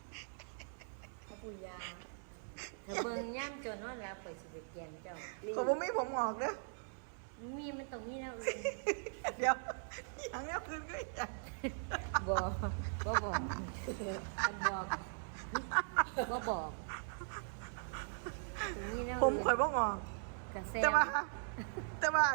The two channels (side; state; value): left; silent; digital silence